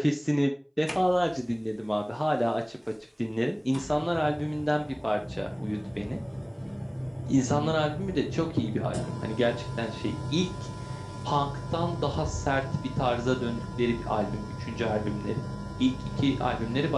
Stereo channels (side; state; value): both; identical; correlation 1.00